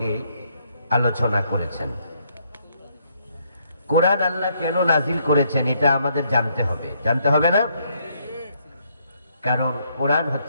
আলোচনা করেছেন। কোরআন আল্লাহ কেন নাজিল করেছেন এটা আমাদের জানতে হবে না? কারণ কোরআন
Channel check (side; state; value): both; inverted; correlation -0.71